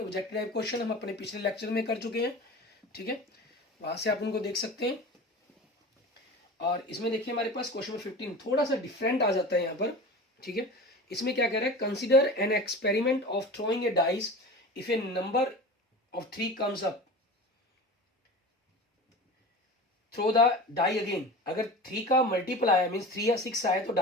टाइप क्वेश्चन हम अपने पिछले लेक्चर में कर चुके हैं। ठीक है, वहां से आप उनको देख सकते हैं। और इसमें देखिए हमारे पास क्वेश्चन नंबर 15 थोड़ा सा डिफरेंट आ जाता है यहाँ पर। ठीक है, इसमें क्या कह रहा है, consider an experiment of throwing a dice if a number of 3 comes up, throw the die again. अगर 3 का मल्टीपल आया मीन्स 3 या 6 आया तो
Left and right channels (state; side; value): normal; both; correlation 0.34